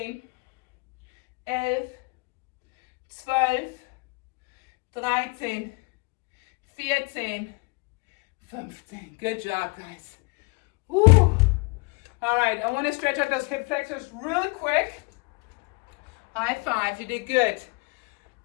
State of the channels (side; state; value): right; quieter; 28.9 dB